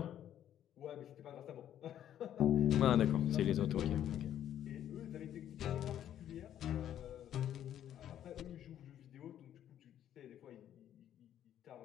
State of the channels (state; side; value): quieter; right; 10.9 dB